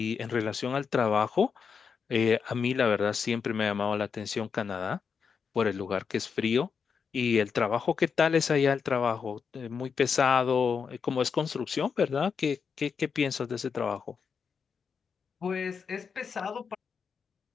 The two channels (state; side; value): quieter; right; 6.1 dB